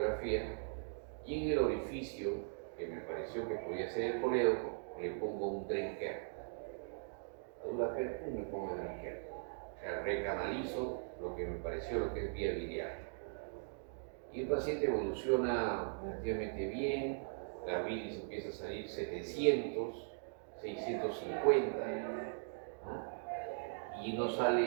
y en el orificio que me pareció que podía ser el colédoco, le pongo un drain care. A dura pena, me pongo el drain care. O sea, recanalizo lo que me pareció lo que es vía biliar. Y el paciente evoluciona relativamente bien, la bilis empieza a salir 700, 650, ¿no? Y no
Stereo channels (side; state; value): left; silent; digital silence